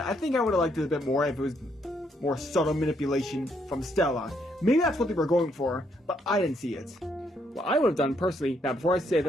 I think I would have liked it a bit more if it was more subtle manipulation from Stella. Maybe that's what they were going for, but I didn't see it. What I would have done personally, now before I say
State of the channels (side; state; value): both; normal; correlation 0.73